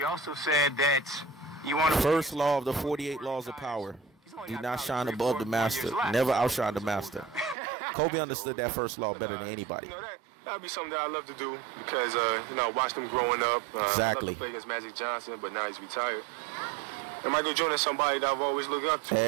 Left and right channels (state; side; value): drops out; left; at 7.6 s